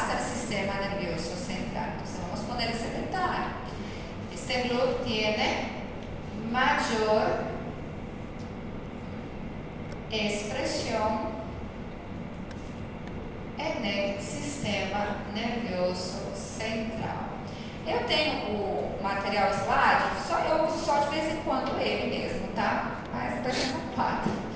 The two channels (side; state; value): both; identical; correlation 1.00